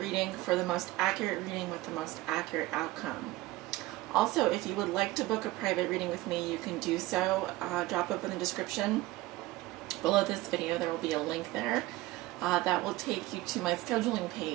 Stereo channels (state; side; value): quieter; left; 18.2 dB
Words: for the most accurate reading with the most accurate outcome. Also, if you would like to book a private reading with me, you can do so. Drop up in the description below this video. There will be a link there. That will take you to my scheduling